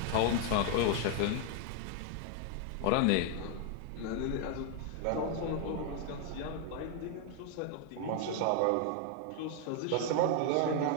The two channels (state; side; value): different; both; correlation 0.01